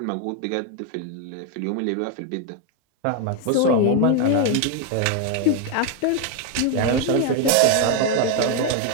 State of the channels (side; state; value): both; different; correlation 0.01